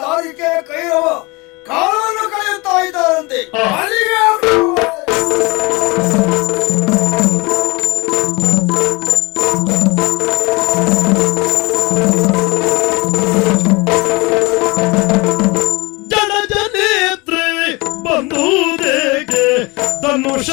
ಕೈರವ ಕಾಲವನ್ನು ಕಳೆಯುತ್ತಾ ಇದ್ದಾರಂತೆ. ಜನಜನೇತ್ರೆ ಬಂಧುದೇಗೆ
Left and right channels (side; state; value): right; quieter; 25.8 dB